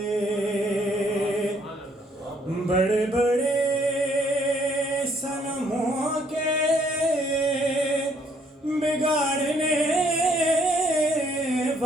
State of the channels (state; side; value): normal; both; correlation 0.66